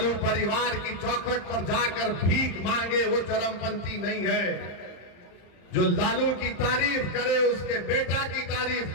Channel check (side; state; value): right; late; 35 ms